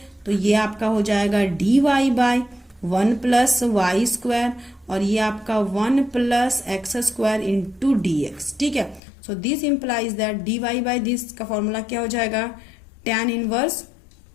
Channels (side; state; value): right; drops out; at 9.0 s